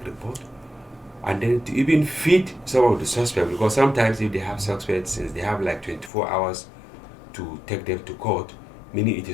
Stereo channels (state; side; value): drops out; right; at 6.1 s